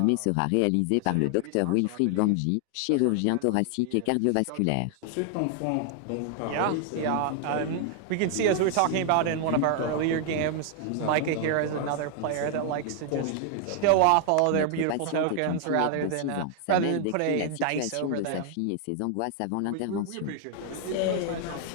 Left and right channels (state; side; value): different; both; correlation 0.00